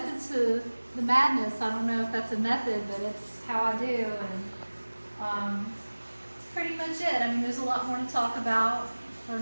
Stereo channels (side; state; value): both; inverted; correlation -1.00